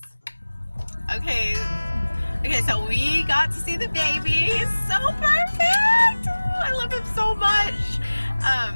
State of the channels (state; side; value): inverted; both; correlation -1.00